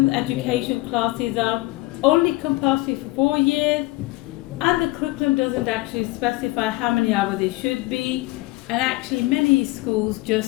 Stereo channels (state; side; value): quieter; right; 21.2 dB